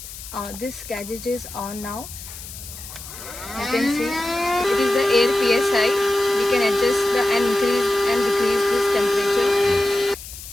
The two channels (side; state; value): left; noise; hiss, 13 dB below the sound